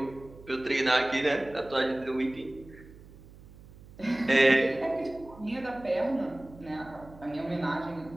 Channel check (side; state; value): right; noise; hum, 20 dB below the sound